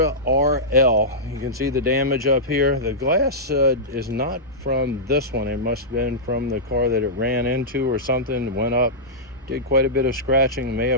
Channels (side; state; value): both; normal; correlation -0.13